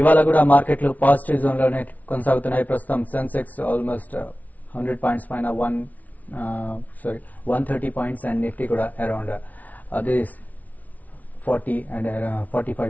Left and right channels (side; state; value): right; late; 0.073 ms